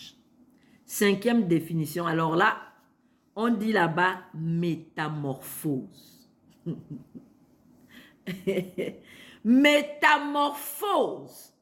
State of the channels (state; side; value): identical; both; correlation 1.00